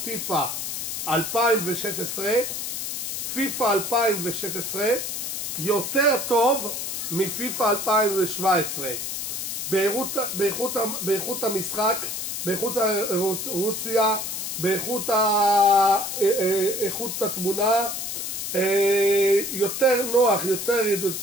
2016. פיפא 2016 יותר טוב מפיפא 2017 באיכות המשחק, באיכות הרוציה, באיכות התמונה, יותר נוח, יותר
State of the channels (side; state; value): left; noise; hiss, 4 dB below the sound